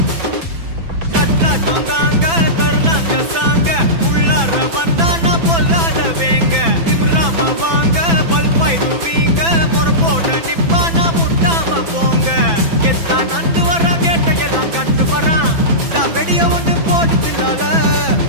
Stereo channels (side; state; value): left; late; 6.0 ms